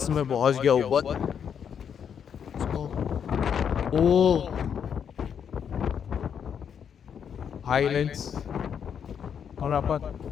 मैं पहुँच गया ऊपर। ओ हाईलैंड्स और अपन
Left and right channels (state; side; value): quieter; right; 7.8 dB